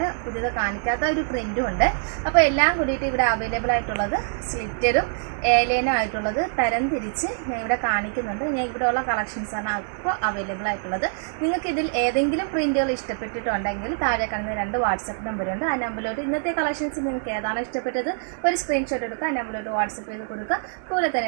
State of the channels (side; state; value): left; silent; digital silence